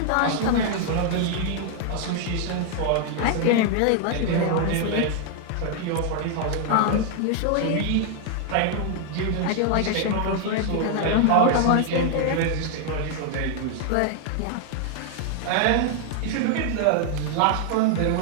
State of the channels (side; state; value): both; different; correlation 0.00